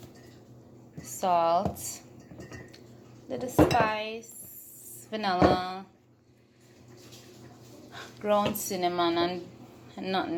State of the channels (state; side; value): identical; both; correlation 1.00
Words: salt, little spice, vanilla, ground cinnamon and